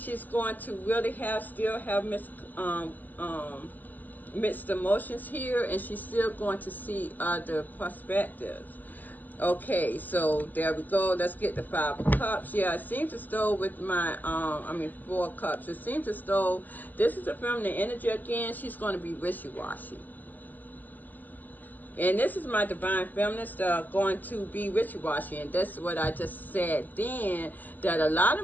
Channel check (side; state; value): right; late; 0.085 ms